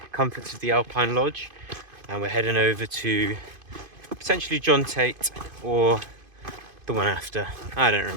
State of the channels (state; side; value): late; left; 2.5 ms